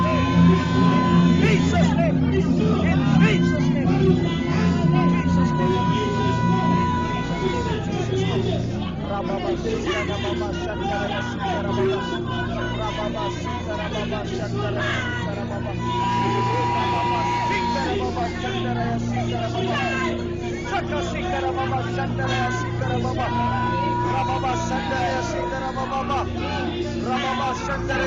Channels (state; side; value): identical; both; correlation 1.00